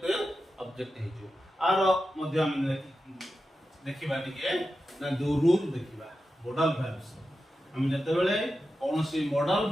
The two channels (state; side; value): normal; both; correlation 0.91